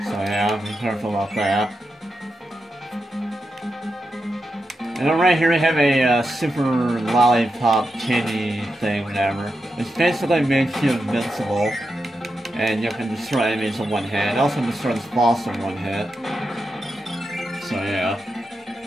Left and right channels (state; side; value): normal; both; correlation 0.88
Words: So yeah, be careful about that. And then right here we have a super lollipop candy thing, whatever. Which basically makes you invincible. And you can destroy enemies in one hit. It also destroys this boss in one hit. So yeah.